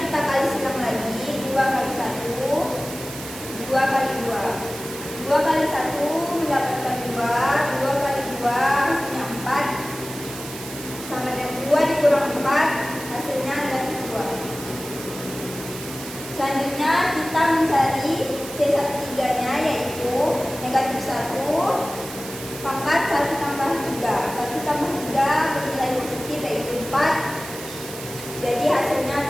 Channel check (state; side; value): noise; right; hiss, 12 dB below the sound